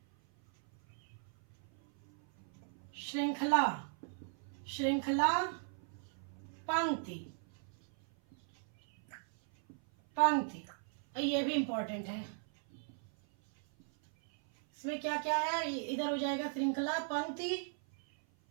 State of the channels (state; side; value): silent; left; 53 dB below the other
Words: श्रृंखला, श्रृंखला, पंक्ति, पंक्ति, ये भी इंपॉर्टेंट है। इसमें क्या क्या है? इधर हो जाएगा श्रृंखला, पंक्ति,